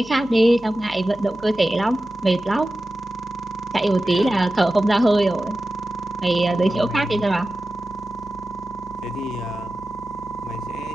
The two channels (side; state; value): both; normal; correlation 0.94